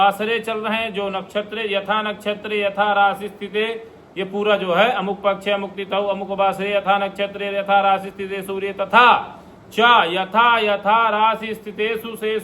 चल रहे हैं, जो नक्षत्र यथा नक्षत्र यथा राशि स्थिते, ये पूरा जो है अमुक पक्ष अमुक तिथौ अमुक वासरे यथा नक्षत्र यथा राशि स्थिते सूर्य तथा च यथा यथा राशि स्थितेषु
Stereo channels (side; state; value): both; identical; correlation 1.00